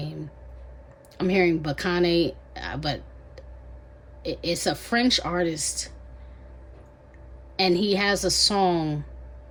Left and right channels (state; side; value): identical; both; correlation 1.00